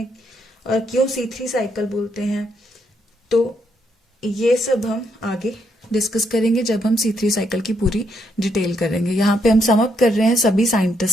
और क्यों C3 साइकिल बोलते हैं, तो ये सब हम आगे डिस्कस करेंगे जब हम C3 साइकिल की पूरी डिटेल करेंगे. यहाँ पे हम सम अप कर रहे हैं सभी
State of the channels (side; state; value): both; normal; correlation 0.76